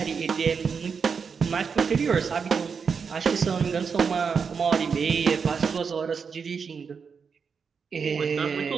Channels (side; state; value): left; quieter; 5.9 dB